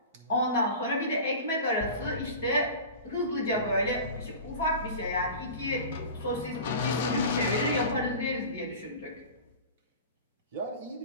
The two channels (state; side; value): inverted; both; correlation -0.34